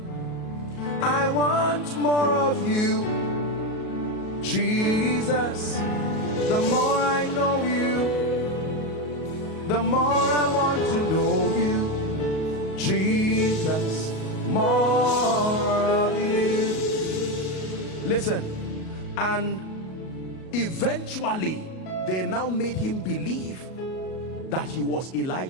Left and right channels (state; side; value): late; right; 37 ms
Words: I want more of you, Jesus. The more I know you, the more I want to know you, Jesus. More of you. Listen, and eventually they now made him believe that he was